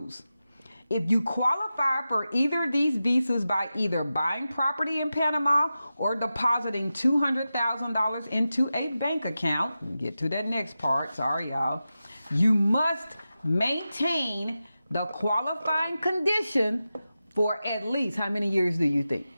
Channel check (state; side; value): inverted; both; correlation -0.93